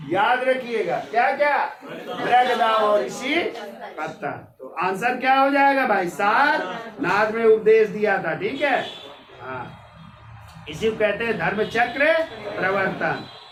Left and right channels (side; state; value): both; identical; correlation 1.00